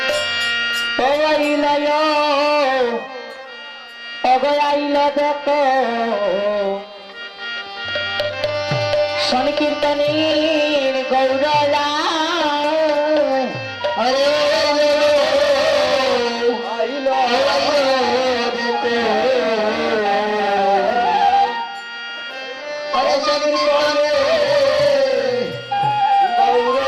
অগয়াইল দেখো সংকীর্তনীর গৌরলা হরে হরে শক্তি বলে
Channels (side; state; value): both; identical; correlation 1.00